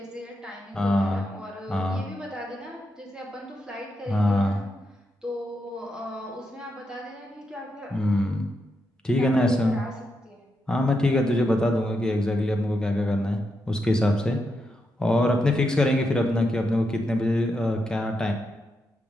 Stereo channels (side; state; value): both; normal; correlation 0.84